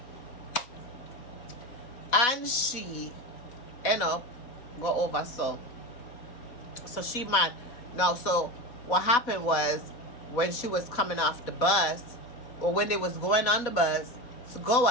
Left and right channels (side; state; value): right; late; 4.1 ms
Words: and she end up go over so she mad. Now so what happened was when she was coming off the bus or when they was going on the bus to go